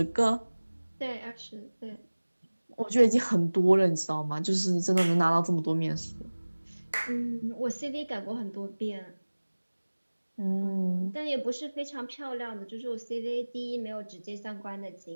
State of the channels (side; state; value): both; inverted; correlation -1.00